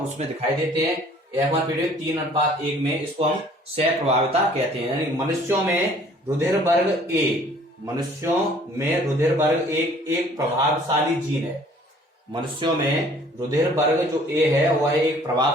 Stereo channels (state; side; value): normal; both; correlation 0.55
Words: दिखाई देते हैं। F1 पीढ़ी 3:1 में इसको हम सह प्रभाविता कहते हैं। यानी मनुष्यों में रुधिर वर्ग A, मनुष्यों में रुधिर वर्ग एक प्रभावशाली जीन है। मनुष्यों में रुधिर वर्ग जो A है वह एक